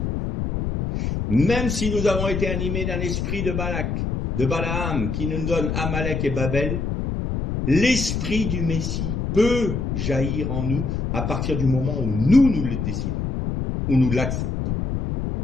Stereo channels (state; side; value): noise; left; rumble, 2 dB below the sound